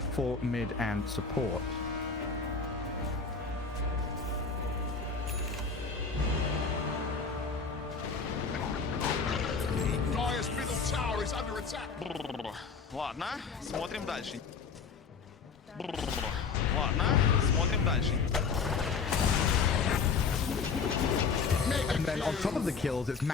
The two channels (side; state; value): right; quieter; 5.2 dB